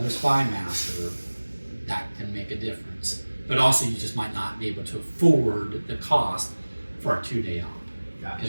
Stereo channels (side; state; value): both; inverted; correlation -1.00